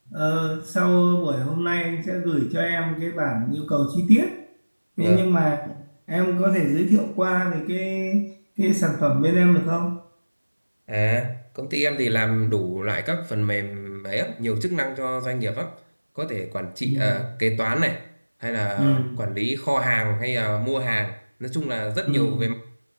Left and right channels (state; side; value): inverted; both; correlation -1.00